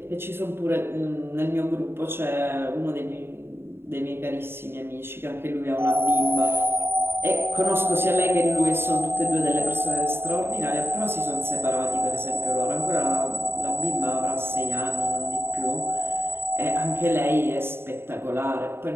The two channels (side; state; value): left; late; 0.11 ms